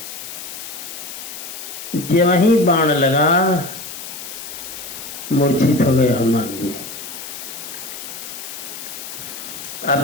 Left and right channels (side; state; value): left; noise; hiss, 10 dB below the sound